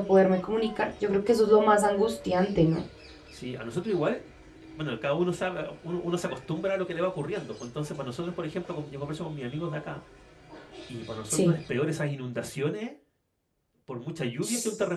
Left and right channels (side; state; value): both; identical; correlation 1.00